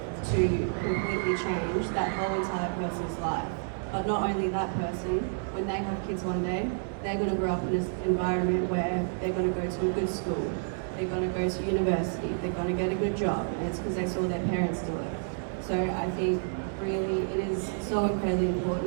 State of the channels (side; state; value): left; silent; 58 dB below the other